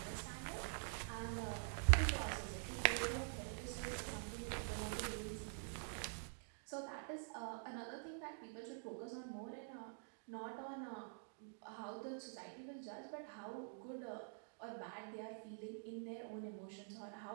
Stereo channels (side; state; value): left; silent; digital silence